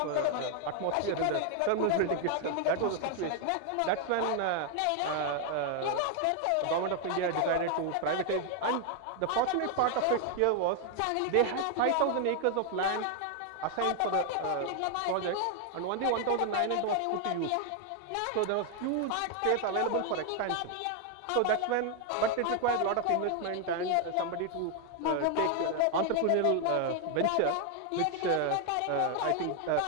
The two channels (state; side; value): different; both; correlation 0.00